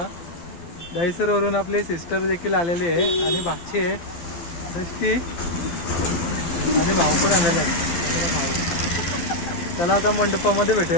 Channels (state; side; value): late; right; 12 ms